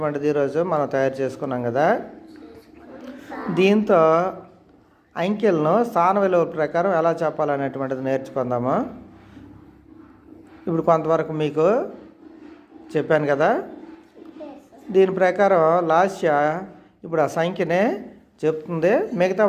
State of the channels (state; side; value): identical; both; correlation 1.00